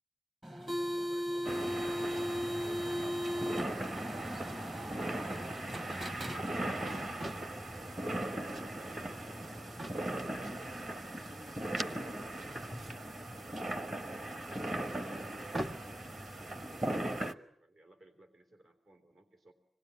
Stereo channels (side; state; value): both; normal; correlation 0.93